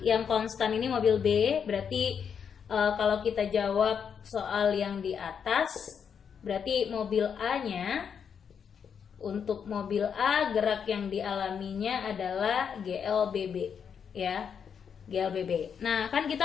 yang konstan ini mobil B. Berarti kalau kita jawab soal yang di atas, berarti mobil A-nya, untuk mobil A gerak yang dialaminya adalah GLBB, ya, GLBB. Nah, kan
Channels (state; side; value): quieter; right; 7.2 dB